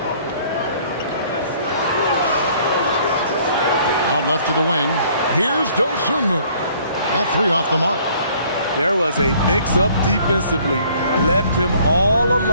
Out left to the wing. Here's Dosunmu. That 3 off the mark. There was a mix-up defensively. Left him all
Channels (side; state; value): both; inverted; correlation -0.58